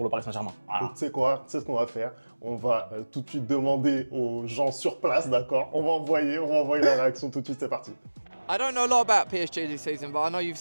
le Paris Saint-Germain? Tu sais quoi? Tu sais ce qu'on va faire? On va tout de suite demander aux gens sur place, d'accord? On va envoyer la réaction tout de suite, c'est parti. I don't know a lot about PSG this season, but I know you've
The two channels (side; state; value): both; inverted; correlation -1.00